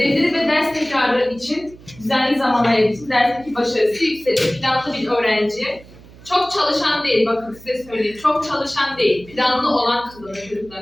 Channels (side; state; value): right; noise; hum, 21 dB below the sound